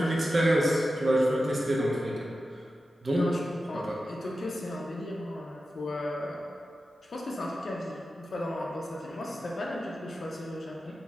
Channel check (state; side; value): normal; both; correlation 0.92